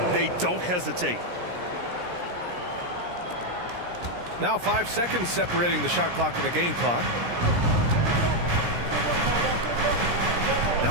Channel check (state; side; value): late; left; 17 ms